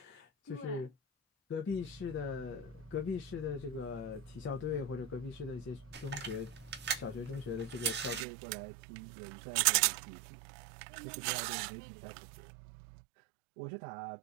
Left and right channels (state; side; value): drops out; left; at 8.2 s